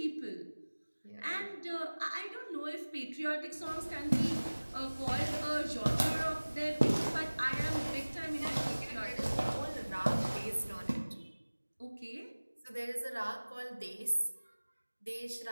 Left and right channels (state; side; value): inverted; both; correlation -1.00